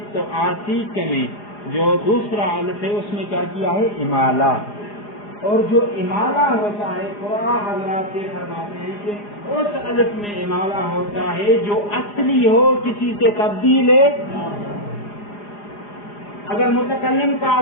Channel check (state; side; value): late; right; 4.9 ms